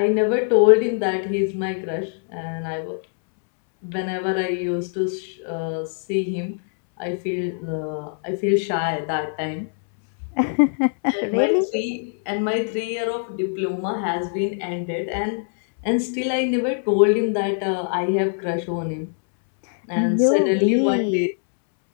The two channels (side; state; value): right; silent; 64 dB below the other